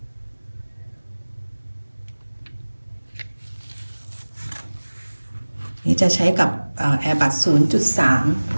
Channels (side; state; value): both; inverted; correlation -1.00